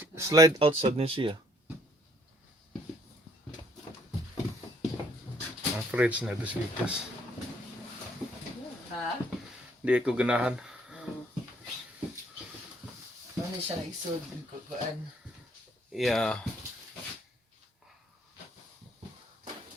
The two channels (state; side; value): normal; both; correlation 0.64